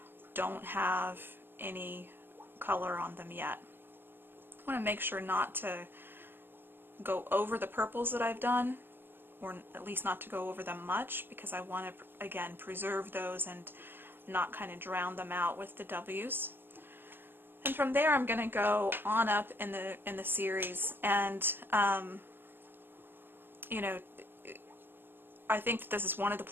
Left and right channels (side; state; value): left; late; 0.10 ms